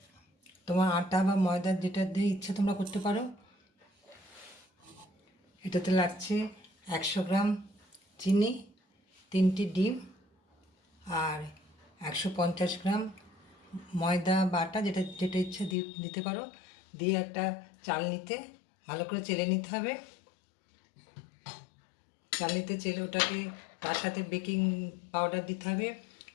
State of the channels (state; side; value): drops out; right; at 15.8 s